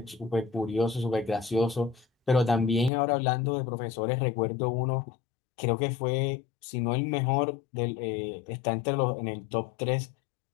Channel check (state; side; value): drops out; right; at 2.9 s